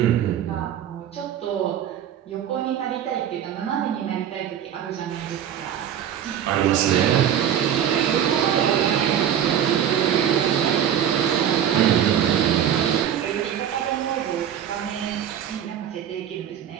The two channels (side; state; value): left; quieter; 9.6 dB